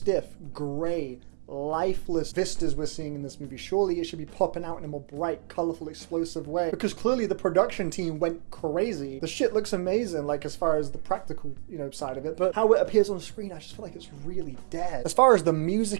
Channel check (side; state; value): left; silent; digital silence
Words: grey, lifeless vistas we're seeing in this movie. Surely it should be popping out in a more bright, colourful, explosive way, because clearly the production team went crazy. The shit looks amazing, like as far as the practical, side of it, but how it appears on screen, I just feel like it's really dead. As far as the